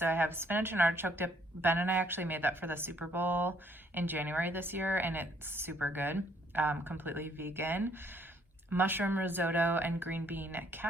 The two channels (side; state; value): both; normal; correlation 0.66